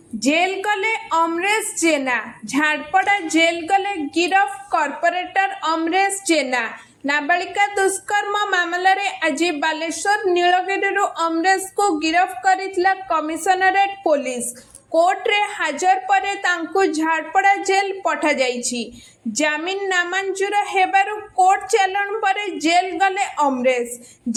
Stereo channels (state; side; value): identical; both; correlation 1.00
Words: जेल गले अमरेश जेना। झाड़पड़ा जेल गले गिरफ कॉर्पोरेटर अमरेश जेना। नाबालिका दुष्कर्म मामला रे आज बालेश्वर नीलगिरी अमरेश को गिरफ करितला कमिशनरेट पुलिस। कोर्ट रे हाजर परे तांकु झाड़पड़ा जेल पठा जाइछि। जामिन नामंजूर हेबारु कोर्ट चालाण परे जेल गले अमरेश।